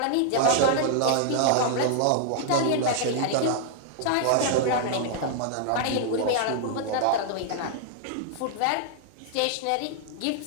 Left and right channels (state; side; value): different; both; correlation -0.01